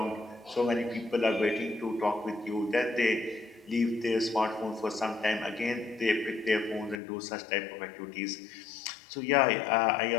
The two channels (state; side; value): drops out; right; at 7.0 s